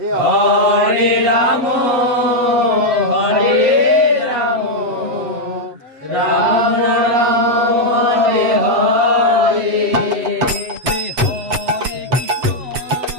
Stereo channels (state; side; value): late; left; 7.7 ms